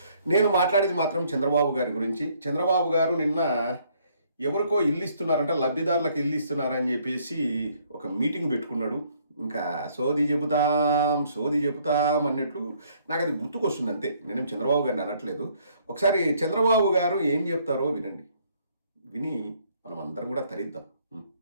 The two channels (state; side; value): inverted; both; correlation -0.66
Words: నేను మాట్లాడేది మాత్రం చంద్రబాబు గారి గురించి. చంద్రబాబు గారు నిన్న ఎవరికో ఇల్లు ఇస్తున్నారంట, లబ్ధిదారులకు ఇల్లు ఇస్తున్నారని చెప్పేసి ఒక మీటింగ్ పెట్టుకున్నాడు. ఇంకా సోది చెబుతాం అన్నట్లు నాకు అది గుర్తుకొస్తుంది అంతే. నేనేం చంద్రబాబు గారిని అనట్లేదు. ఒకసారి చంద్రబాబు గారు ఏం చెప్తారో వినండి. విని మనం అందరం కూడా తరిద్దాం.